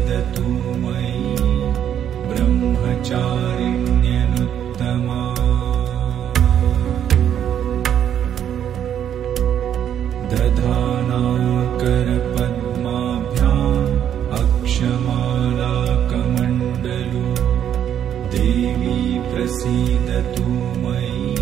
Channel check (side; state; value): left; quieter; 9.7 dB